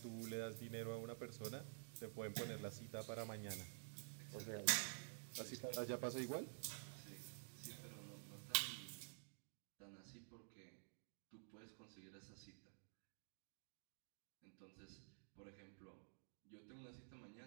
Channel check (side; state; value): left; silent; digital silence